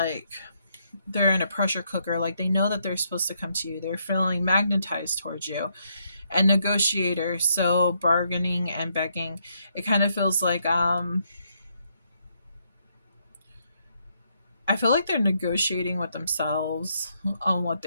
they're in a pressure cooker. Like they know that they're supposed to come to you. They're feeling magnetized towards you. And negotiator, so bargaining and begging. It kind of feels like I feel like they're negotiating with themselves on what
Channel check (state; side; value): inverted; both; correlation -0.75